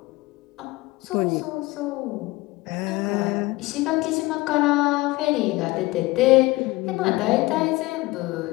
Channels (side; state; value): right; quieter; 20.9 dB